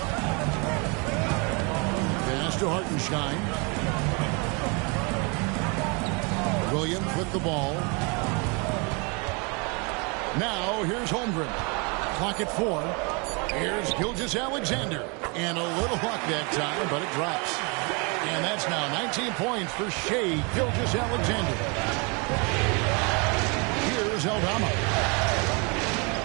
Pass to Hartenstein. Williams with the ball. Now, here's Holmgren. Clock at 4. Here's Gilgeous-Alexander. And a little luck that time, but it drops. And that's now 19 points for Shai Gilgeous-Alexander. Here's Aldama.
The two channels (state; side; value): quieter; left; 31.7 dB